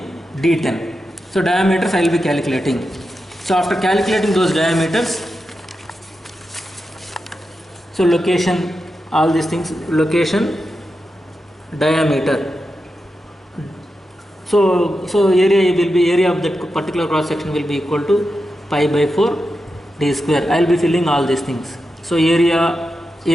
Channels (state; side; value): normal; both; correlation 0.89